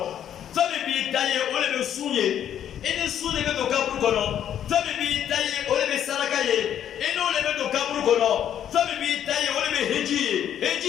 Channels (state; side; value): quieter; right; 10.0 dB